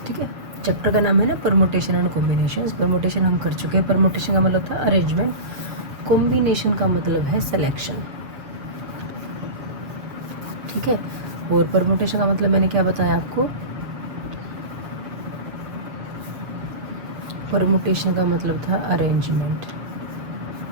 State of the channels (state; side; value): late; left; 7.2 ms